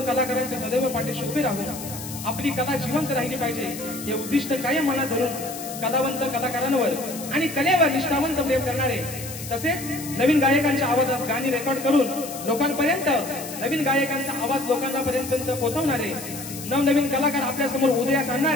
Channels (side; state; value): left; noise; hiss, 11 dB below the sound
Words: कलाकारांच्या सदैव पाठीशी उभे राहून आपली कला जिवंत राहिली पाहिजे हे उद्दिष्ट कायम मनात धरून कलावंत कलाकारांवर आणि कलेवर निष्ठावंत प्रेम करणारे, तसेच नवीन गायकांच्या आवाजात गाणी रेकॉर्ड करून लोकांपर्यंत नवीन गायकांचा आवाज लोकांपर्यंत पोहोचवणारे, नवनवीन कलाकार आपल्या समोर उदयास